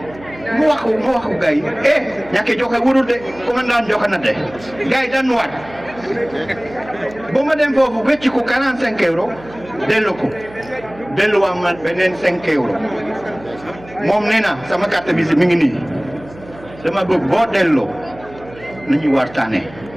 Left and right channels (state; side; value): noise; right; hum, 20 dB below the sound